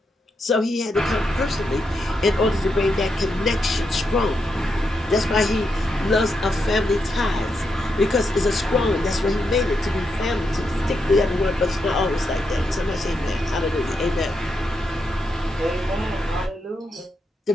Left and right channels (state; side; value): normal; both; correlation 0.83